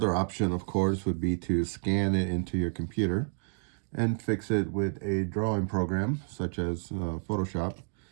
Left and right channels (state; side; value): silent; left; digital silence